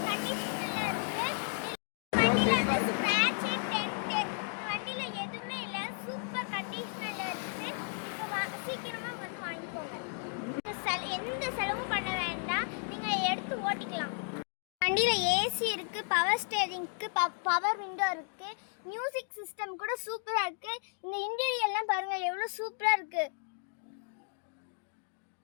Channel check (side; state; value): right; silent; 55 dB below the other